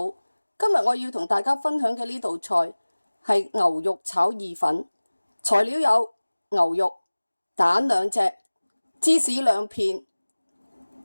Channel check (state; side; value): inverted; both; correlation -1.00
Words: 今日我要同大家分享嘅呢道菜係牛肉炒意粉，材料有牛肉、蛋2隻、芝士2片、